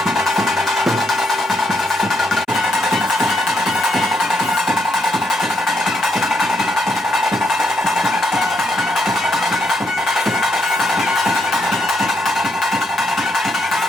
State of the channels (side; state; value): both; normal; correlation 0.76